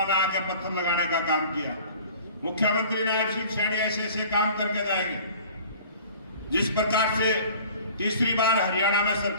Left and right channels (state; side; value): inverted; both; correlation -0.46